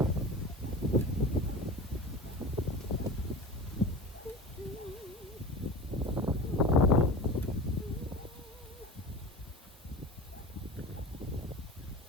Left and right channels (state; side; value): normal; both; correlation 0.33